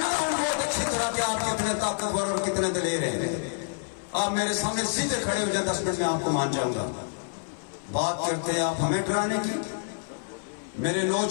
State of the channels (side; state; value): right; silent; 60 dB below the other